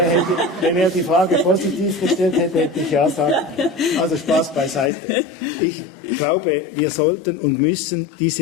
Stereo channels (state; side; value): drops out; right; at 4.9 s